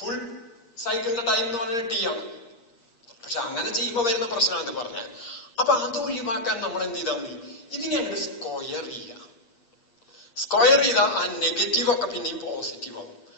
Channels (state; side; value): late; right; 8.6 ms